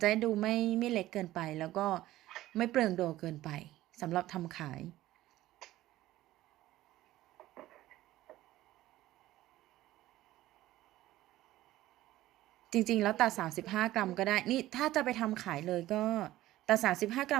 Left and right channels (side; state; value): left; quieter; 15.5 dB